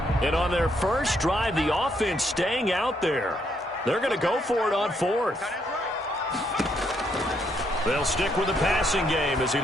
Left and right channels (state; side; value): normal; both; correlation 0.74